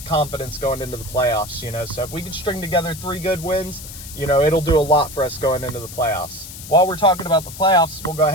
confidence going into the playoffs, So if we can string together 3 good wins, it'll do a lot for us going into the playoffs. While we're talking about the playoffs, we'll go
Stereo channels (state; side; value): noise; left; hiss, 13 dB below the sound